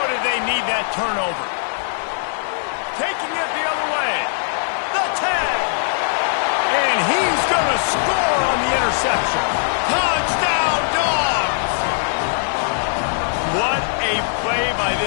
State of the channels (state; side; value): silent; right; 66 dB below the other